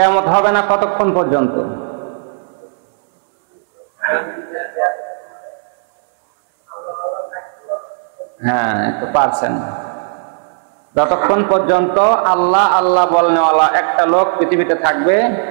হবে না কতক্ষণ পর্যন্ত? হ্যাঁ, একটু পারছেন। যতক্ষণ পর্যন্ত আল্লাহ আল্লাহ বলনেওয়ালা একটা লোক পৃথিবীতে থাকবে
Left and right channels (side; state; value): left; silent; 70 dB below the other